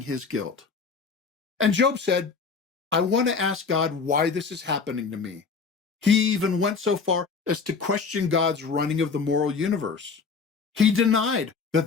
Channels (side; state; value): right; quieter; 5.2 dB